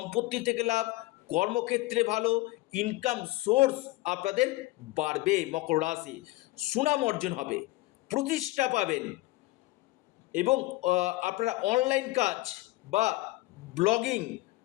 থেকে লাভ, কর্মক্ষেত্রে ভালো, ইনকাম সোর্স আপনাদের বাড়বে। মকর রাশি সুনাম অর্জন হবে, প্রতিষ্ঠা পাবেন, এবং আপনারা অনলাইন কাজ বা ব্লগিং,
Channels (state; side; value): quieter; right; 19.4 dB